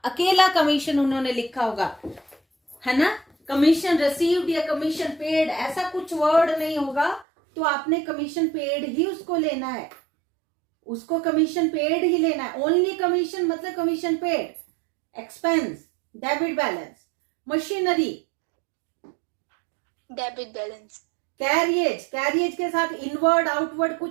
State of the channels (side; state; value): left; drops out; at 7.2 s